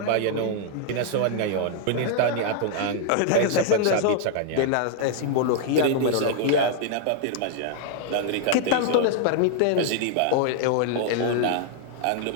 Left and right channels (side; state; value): both; different; correlation 0.00